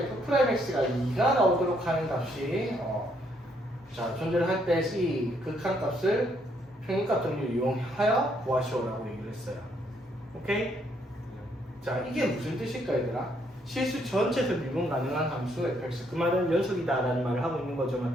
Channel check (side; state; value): both; normal; correlation 0.71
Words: f'x가 2가 나오도록 하는 값이 자 존재를 할 때 이 극한값을 평균값 정리를 이용하여 구하시오라고 얘기를 했어요. 오케이? 자 이게 무슨 뜻일까 얘들아? 실수 전체에서 미분 가능한 함수 fx 그 말은 연속이다라는 말을 하고 있는 거죠,